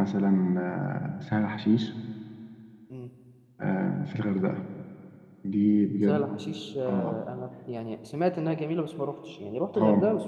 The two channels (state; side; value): identical; both; correlation 1.00